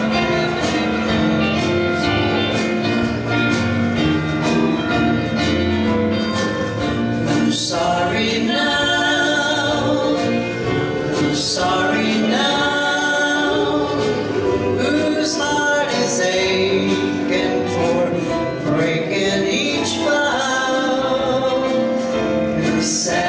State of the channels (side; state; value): both; identical; correlation 1.00